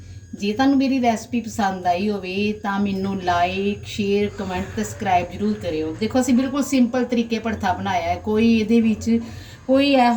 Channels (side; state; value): both; identical; correlation 1.00